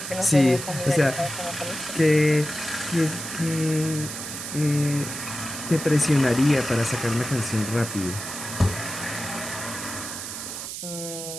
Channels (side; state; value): right; noise; hiss, 7 dB below the sound